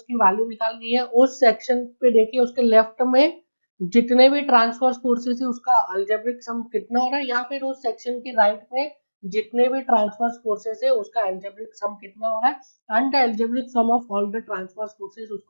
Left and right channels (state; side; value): inverted; both; correlation -1.00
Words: की वैल्यू निकालनी है, उस सेक्शन पे देखिए उसके लेफ्ट में जितने भी ट्रांसवर्स फोर्सेस है उसका अलजेब्रिक सम कितना हो रहा है, या फिर उस सेक्शन के राइट में जितने भी ट्रांसवर्स फोर्सेस है उसका अलजेब्रिक सम कितना हो रहा है, and the algebraic sum of all the transverse forces